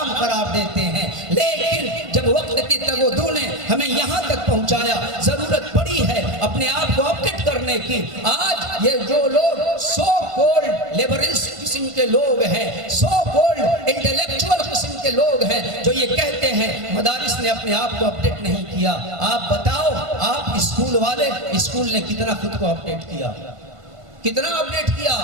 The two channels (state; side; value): late; left; 1.5 ms